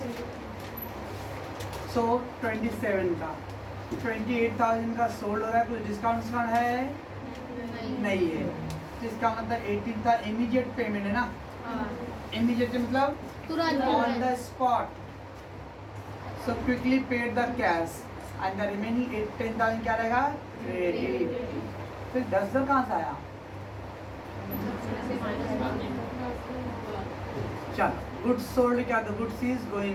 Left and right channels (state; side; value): identical; both; correlation 1.00